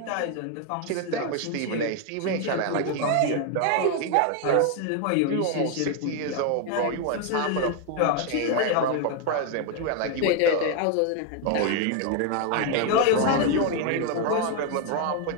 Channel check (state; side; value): different; both; correlation 0.01